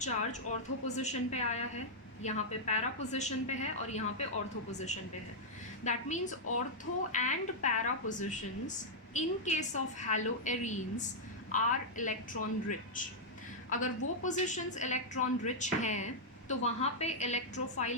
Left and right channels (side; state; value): both; normal; correlation -0.06